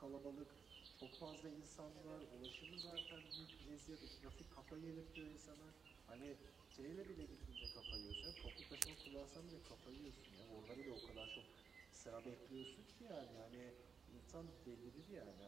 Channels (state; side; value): quieter; left; 6.0 dB